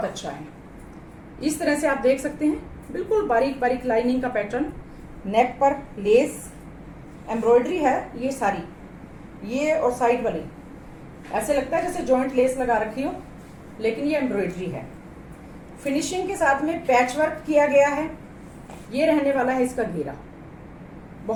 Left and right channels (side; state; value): both; identical; correlation 1.00